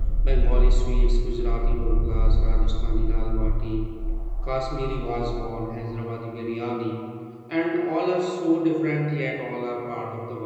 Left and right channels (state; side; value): identical; both; correlation 1.00